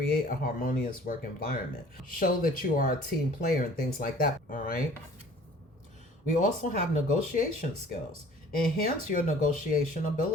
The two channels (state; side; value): normal; both; correlation 0.50